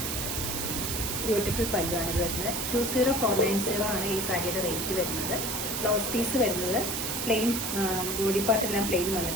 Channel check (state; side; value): noise; right; hiss, 2 dB below the sound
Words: ബ്യൂട്ടിഫുൾ പല്ലുവാണ് ഇത് വരുന്നത്. 20490 ആണ് ഈ സാരിയുടെ റേറ്റ് വരുന്നത്. ബ്ലൗസ് പീസ് വരുന്നത് പ്ലെയിൻ, ബോഡി പാർട്ടെല്ലാം പ്ലെയിൻ